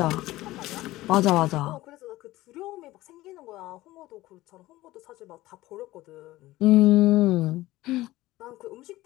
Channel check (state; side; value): quieter; right; 17.5 dB